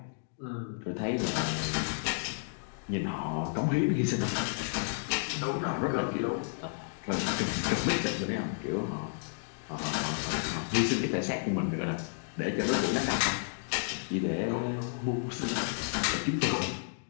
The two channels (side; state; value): right; silent; digital silence